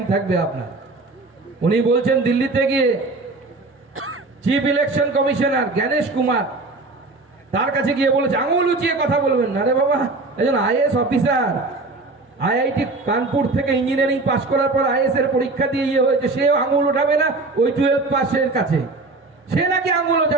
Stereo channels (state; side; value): quieter; left; 3.4 dB